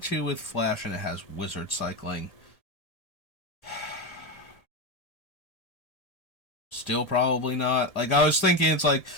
with Flash, and it has Wizard Cycling. Still probably not. Like, I was thinking, it's like,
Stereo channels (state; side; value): late; right; 1.7 ms